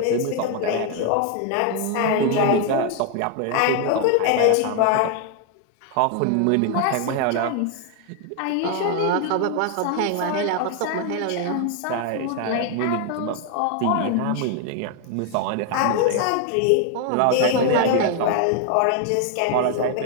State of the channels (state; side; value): different; both; correlation 0.00